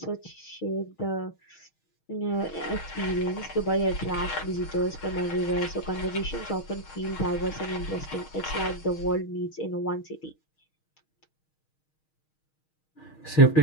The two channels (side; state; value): right; late; 6.4 ms